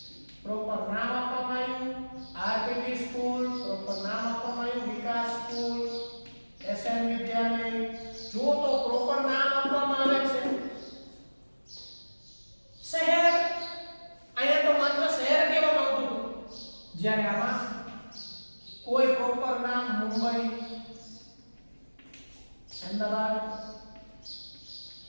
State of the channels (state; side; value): inverted; both; correlation -1.00